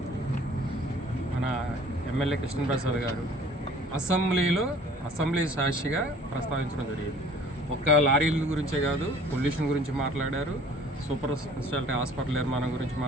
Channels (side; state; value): both; normal; correlation 0.52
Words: మన ఎమ్మెల్యే కృష్ణప్రసాద్ గారు అసెంబ్లీ సాక్షిగా ప్రస్తావించడం జరిగింది. ఒక్క లారీల గురించే కాదు, పొల్యూషన్ గురించి మాట్లాడారు, సూపర్ స్పెషాలిటీ హాస్పిటల్ నిర్మాణం గురించి